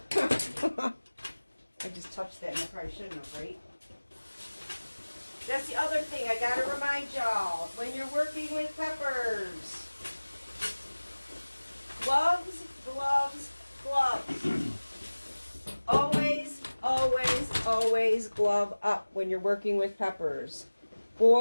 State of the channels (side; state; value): both; inverted; correlation -1.00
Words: I just touched that and I probably shouldn't have, right? That's the other thing I gotta remind y'all. When you're working with peppers. Gloves, gloves, gloves. Always, always, always glove up when you're working with peppers.